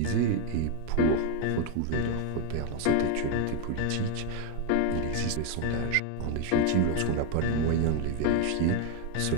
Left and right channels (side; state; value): both; different; correlation 0.01